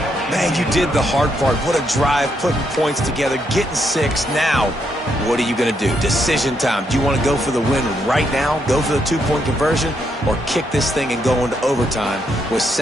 Man, you did the hard part. What a drive, putting points together, getting 6. Now, what are you going to do? Decision time. Do you want to go for the win right now, go for the 2-point conversion, or kick this thing and go into overtime with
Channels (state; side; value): normal; both; correlation 0.77